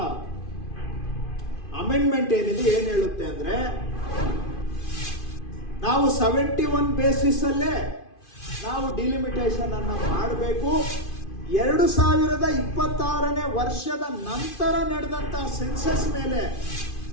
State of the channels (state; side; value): late; right; 2.5 ms